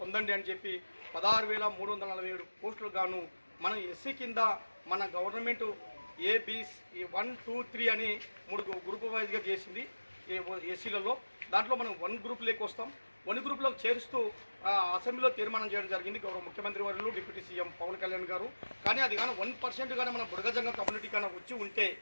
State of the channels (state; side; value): inverted; both; correlation -1.00